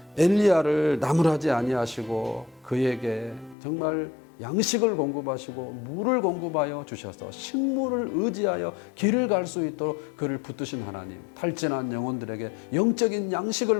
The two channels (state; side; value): drops out; right; at 3.6 s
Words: 엘리야를 나무라지 아니하시고 그에게 정말 양식을 공급하시고 물을 공급하여 주셔서 식물을 의지하여 길을 갈 수 있도록 그를 붙드신 하나님, 탈진한 영혼들에게 영적인